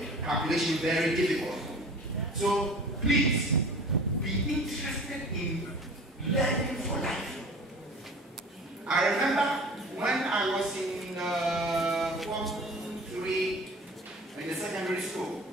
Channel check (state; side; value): normal; both; correlation 0.42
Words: calculation very difficult. So please, be interested in learning for life. I remember when I was in Form 3 in the secondary school.